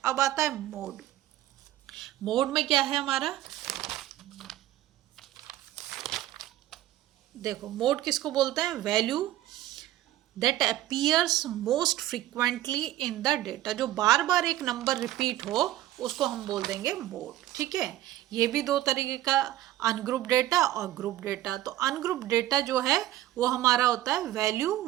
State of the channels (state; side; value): quieter; left; 14.4 dB